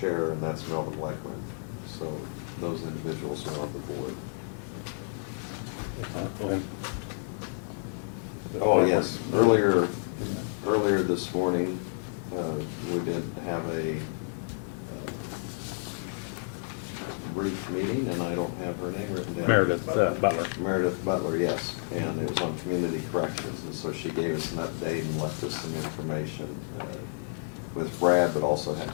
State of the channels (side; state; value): right; silent; digital silence